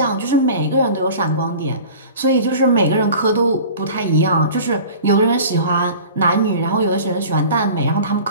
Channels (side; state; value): both; inverted; correlation -0.41